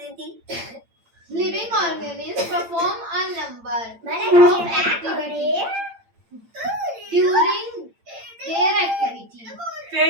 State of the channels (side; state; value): left; late; 8.8 ms